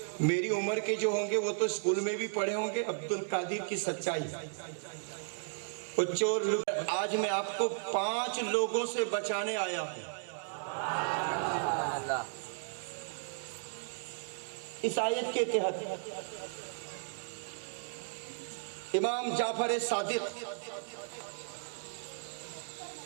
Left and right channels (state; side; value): silent; left; digital silence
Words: मेरी उम्र के जो होंगे वो तो स्कूल में भी पढ़े होंगे अब्दुल कादिर की सच्चाई। वो चोर, आज मैं आपको 5 लोगों से बचाने आया हूं इस आयत के तहत। इमाम जाफर सादिक